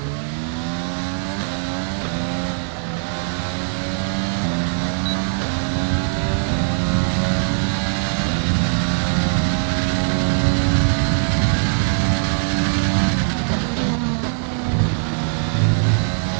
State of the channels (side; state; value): left; silent; digital silence